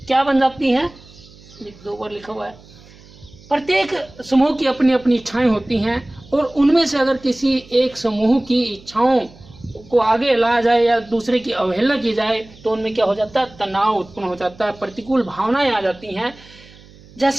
क्या बन जाती हैं? 2 बार लिखा हुआ है। प्रत्येक समूह की अपनी अपनी इच्छाएं होती हैं, और उनमें से अगर किसी एक समूह की इच्छाओं को आगे लाया जाए या दूसरे की अवहेलना की जाए तो उनमें क्या हो जाता है? तनाव उत्पन्न हो जाता है, प्रतिकूल भावनाएं आ जाती हैं।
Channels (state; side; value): noise; right; hum, 23 dB below the sound